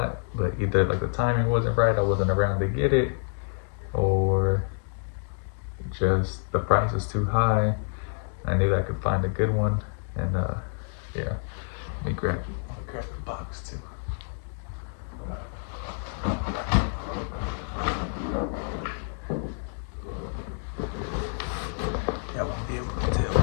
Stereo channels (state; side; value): silent; right; digital silence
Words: but either like the timing wasn't right, I wasn't around to get it, or just the price is too high. I knew I could find a good one, and yeah, let me grab the box too. Y'all won't be able to tell